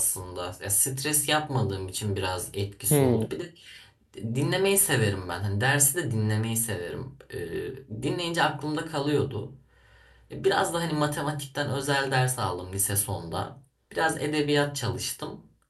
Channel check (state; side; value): identical; both; correlation 1.00